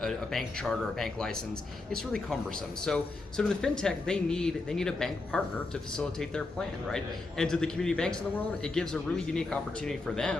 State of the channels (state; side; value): quieter; right; 3.3 dB